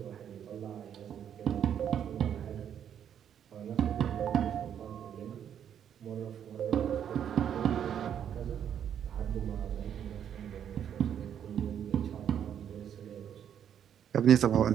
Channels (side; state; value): left; quieter; 9.2 dB